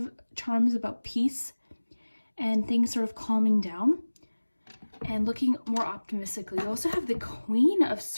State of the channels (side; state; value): both; inverted; correlation -1.00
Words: charms about peace and things sort of calming down and looking more optimistically. You also have the Queen of